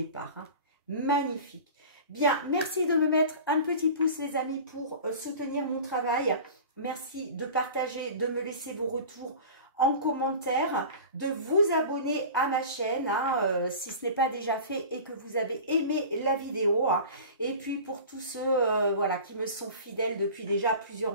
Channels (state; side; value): inverted; both; correlation -0.37